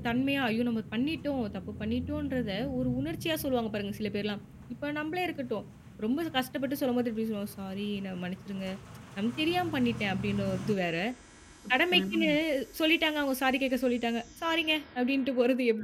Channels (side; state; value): both; identical; correlation 1.00